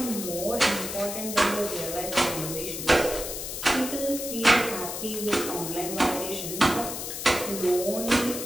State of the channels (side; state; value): left; noise; hiss, 6 dB below the sound